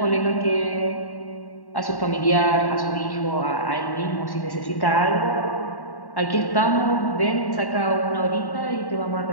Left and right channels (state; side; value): late; right; 1.1 ms